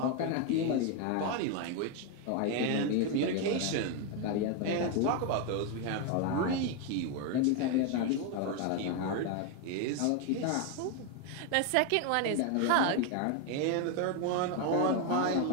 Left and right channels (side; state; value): both; different; correlation 0.01